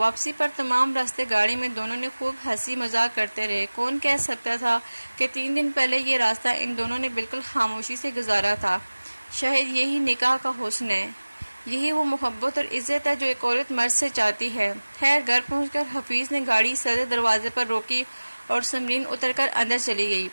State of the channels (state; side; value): inverted; both; correlation -1.00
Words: پر تمام راستے گاڑی میں دونوں نے خوب ہنسی مذاق کرتے رہے۔ کون کہہ سکتا تھا کہ 3 دن پہلے یہ راستہ ان دونوں نے بالکل خاموشی سے گزارا تھا۔ شاید یہی نکاح کا حسن ہے، یہی وہ محبت اور عزت ہے جو ایک عورت مرد سے چاہتی ہے۔ خیر گھر پہنچ کر حفیظ نے گاڑی صدر دروازے پر روکی اور سمرین اتر کر اندر چلی گئی۔